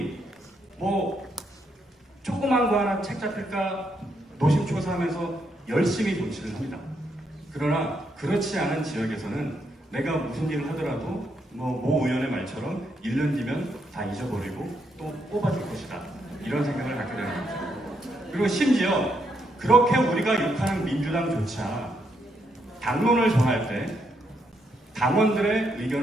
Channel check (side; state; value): both; normal; correlation 0.77